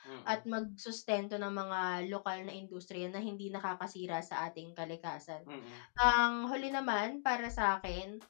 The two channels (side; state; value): right; silent; digital silence